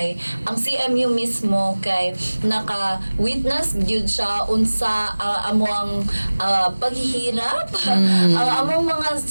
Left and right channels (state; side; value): inverted; both; correlation -1.00